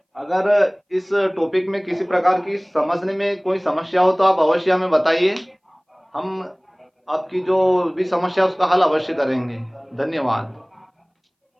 अगर इस टॉपिक में किसी प्रकार की समझने में कोई समस्या हो तो आप अवश्य हमें बताइए। हम आपकी जो भी समस्या उसका हल अवश्य करेंगे। धन्यवाद।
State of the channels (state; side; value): identical; both; correlation 1.00